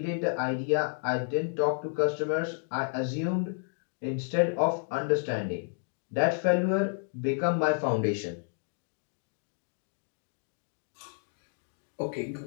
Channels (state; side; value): silent; right; 57 dB below the other